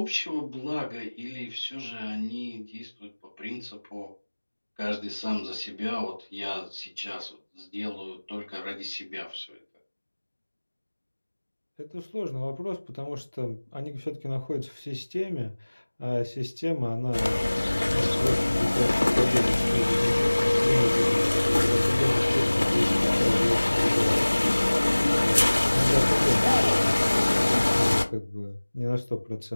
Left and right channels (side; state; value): both; inverted; correlation -1.00